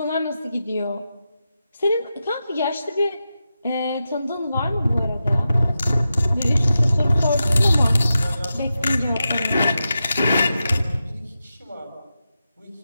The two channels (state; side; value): inverted; both; correlation -0.90